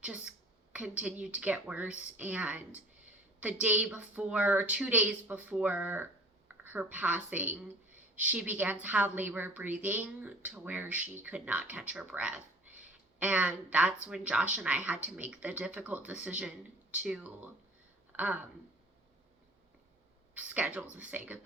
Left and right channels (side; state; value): both; normal; correlation 0.46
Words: just continued to get worse. And the day before, 2 days before her passing, she began to have labor breathing to where she could not catch her breath. And that's when Josh and I had to make the difficult decision to schedule to say